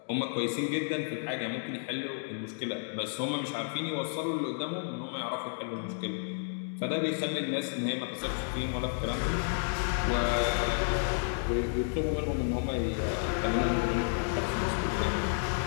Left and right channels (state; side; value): silent; right; digital silence